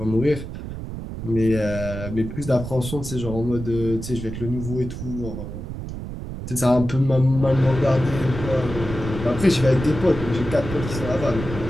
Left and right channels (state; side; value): noise; right; rumble, 8 dB below the sound